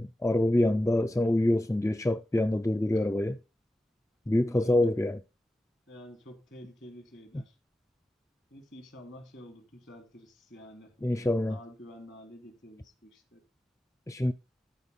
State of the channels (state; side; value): normal; both; correlation 0.93